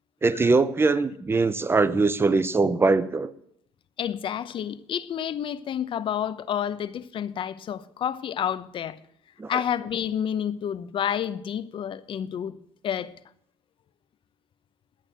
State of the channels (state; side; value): normal; both; correlation 0.64